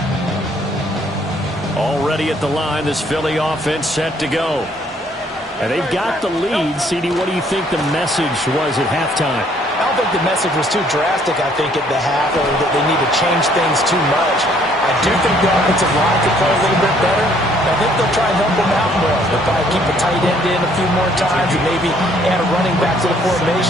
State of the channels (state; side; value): normal; both; correlation 0.64